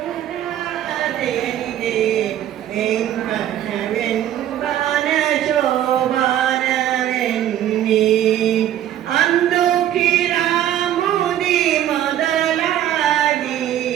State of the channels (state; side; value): quieter; left; 11.6 dB